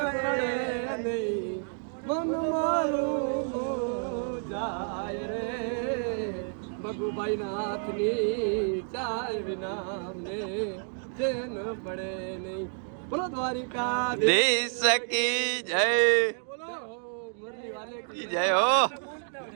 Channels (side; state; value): left; silent; 58 dB below the other